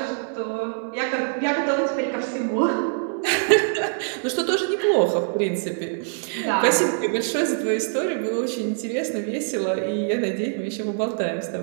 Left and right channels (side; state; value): left; silent; digital silence